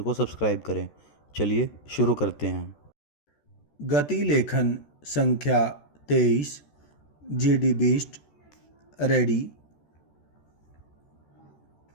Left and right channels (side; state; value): right; late; 14 ms